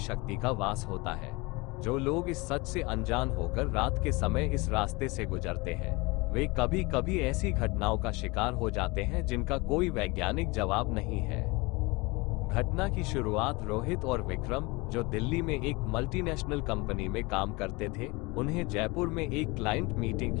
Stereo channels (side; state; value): right; quieter; 25.1 dB